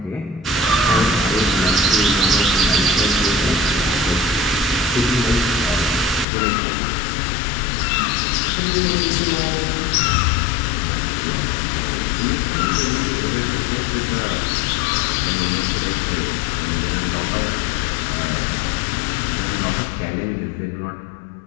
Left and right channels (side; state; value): right; drops out; at 6.2 s